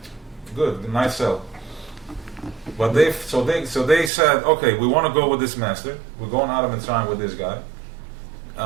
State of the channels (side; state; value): left; drops out; at 4.1 s